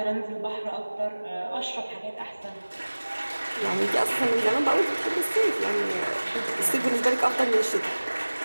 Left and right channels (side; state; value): both; inverted; correlation -1.00